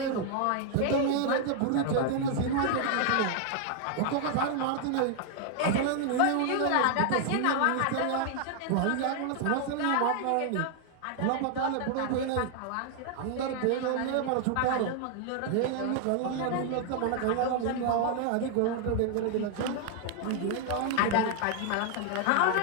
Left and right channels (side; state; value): both; different; correlation 0.00